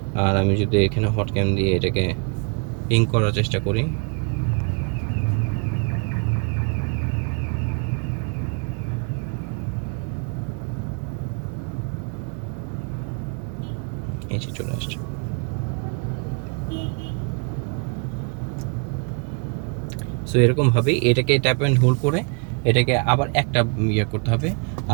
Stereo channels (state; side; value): quieter; left; 37.3 dB